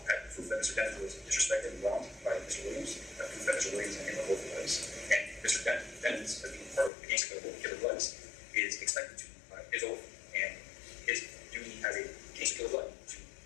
That proof that Mr. Dennis was disrespected and wronged by Mr. Williams. That proof that Mr. Williams and him are both police. And Mr. Dennis, as being part of the gangster killer bloods, is expected to his oath and his duty as a gangster killer blood to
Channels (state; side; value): drops out; right; at 6.9 s